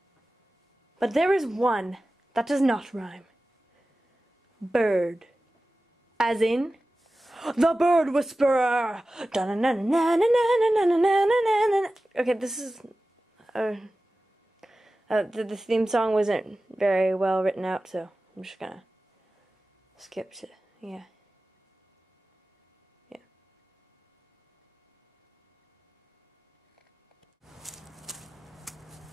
But there is one that does not rhyme. Bird. As in, the bird whisperer. Okay, this is... the theme song wasn't very well written out, so I'm just gonna skip to, yeah.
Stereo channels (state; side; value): normal; both; correlation 0.95